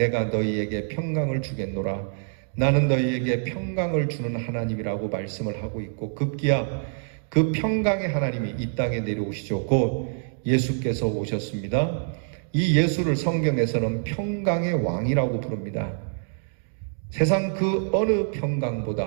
너희에게 평강을 주겠노라, 나는 너희에게 평강을 주는 하나님이라고 말씀을 하고 있고, 급기야 그 평강의 하나님이 이 땅에 내려오시죠. 곧 예수께서 오셨습니다. 이 예수를 성경에서는 평강의 왕이라고 부릅니다. 세상 그 어느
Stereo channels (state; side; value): silent; left; digital silence